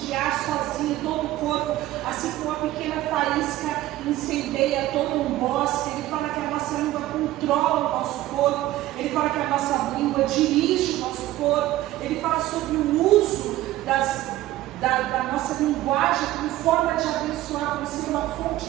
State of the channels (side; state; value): left; quieter; 15.4 dB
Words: sozinha todo o corpo, assim como uma pequena faísca incendeia todo um bosque. Ele fala que a nossa língua controla o nosso corpo. Ele fala que a nossa língua dirige o nosso corpo. Ele fala sobre o uso da nossa linguagem como forma de abençoar, como ser uma fonte